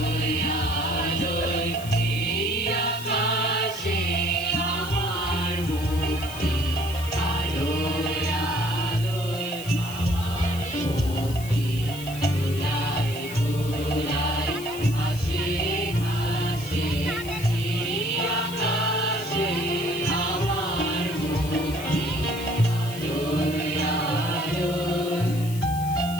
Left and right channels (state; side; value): noise; left; hiss, 14 dB below the sound